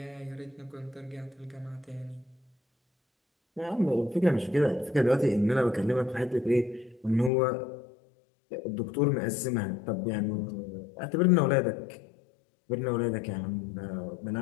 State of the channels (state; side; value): drops out; right; at 7.3 s